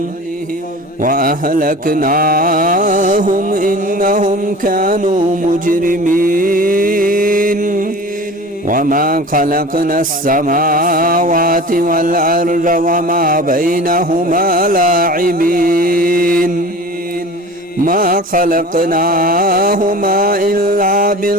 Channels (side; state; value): both; normal; correlation 0.38